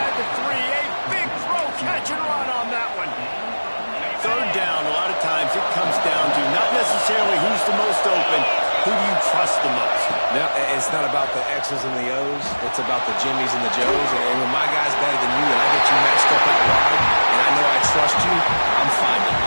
the 3. A big throw, catch and run on that one. 3rd down, a lot of times it comes down to not necessarily who's the most open, who do you trust the most? No, it's not about the X's and the O's. It's about the Jimmies and the Joes. And when my guy's better than you and I get you matched up out wide and I know I trust you, I'm fine with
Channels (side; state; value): both; inverted; correlation -1.00